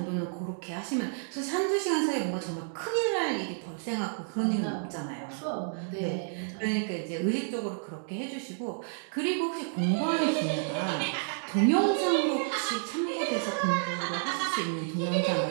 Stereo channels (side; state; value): left; silent; digital silence